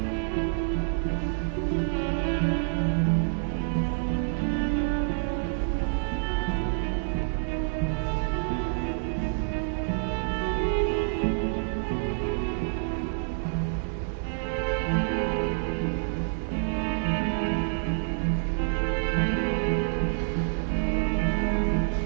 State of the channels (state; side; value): silent; left; digital silence